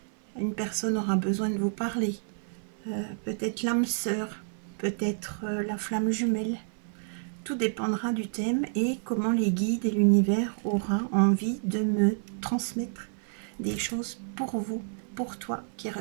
Une personne aura besoin de vous parler. Peut-être l'âme sœur, peut-être la flamme jumelle. Tout dépendra du thème et comment les guides et l'univers aura envie de me transmettre des choses pour vous, pour toi qui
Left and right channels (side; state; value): left; silent; 58 dB below the other